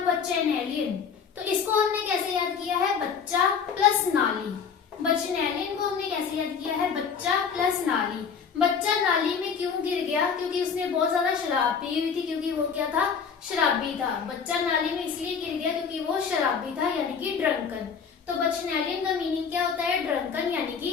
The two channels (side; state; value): right; quieter; 6.4 dB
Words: बचेनेलियन। तो इसको हमने कैसे याद किया है? बच्चा प्लस नाली। बचनेलियन को हमने कैसे याद किया है? बच्चा प्लस नाली। बच्चा नाली में क्यों गिर गया? क्योंकि उसने बहुत ज्यादा शराब पी हुई थी, क्योंकि वो क्या था? शराबी था। बच्चा नाली में इसलिए गिर गया क्योंकि वो शराबी था, यानी कि ड्रंकन। तो बचनेलियन का मीनिंग क्या होता है? ड्रंकन यानी